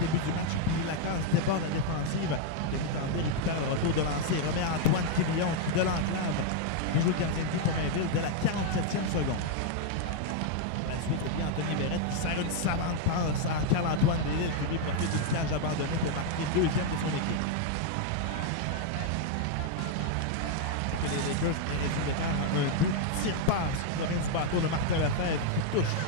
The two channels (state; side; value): different; both; correlation 0.00